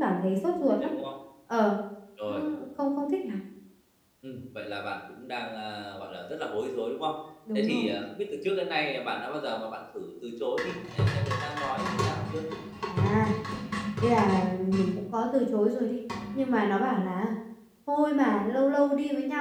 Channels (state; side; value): identical; both; correlation 1.00